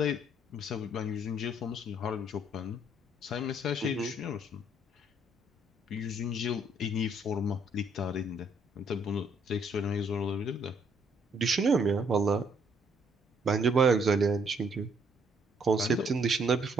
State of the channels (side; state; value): both; normal; correlation 0.67